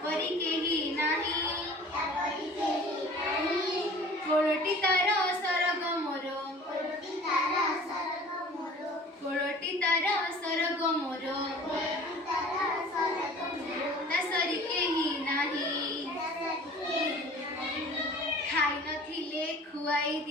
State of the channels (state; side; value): normal; both; correlation 0.45